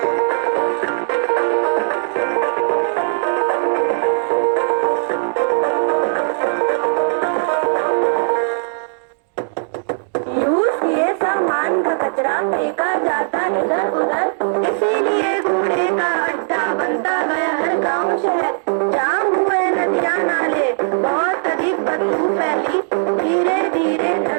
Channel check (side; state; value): left; silent; digital silence